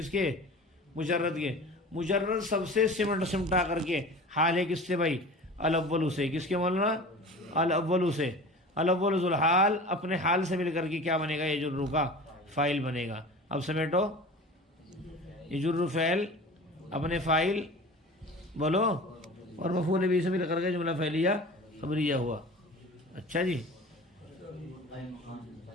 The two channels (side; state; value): both; normal; correlation 0.37